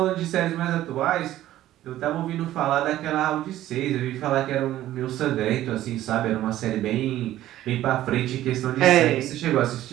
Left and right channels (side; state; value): left; quieter; 13.8 dB